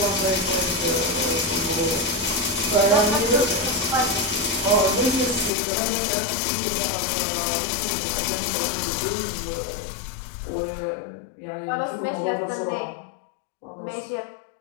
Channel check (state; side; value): drops out; right; at 5.5 s